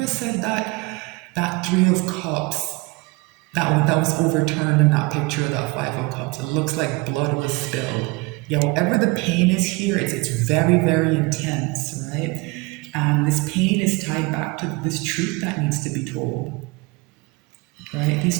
said that Three of Cups, that was overturned in that picture of that Five of Cups. It looks like blood was spilled. Yeah, whatever the pain is here, it's very, very intense, right? And this pain is tied back to this truth that needs to be told, right? These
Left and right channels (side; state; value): left; quieter; 24.1 dB